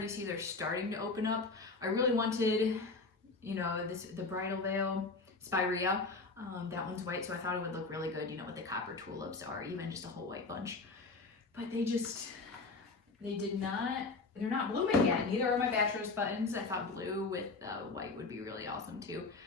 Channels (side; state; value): right; quieter; 3.7 dB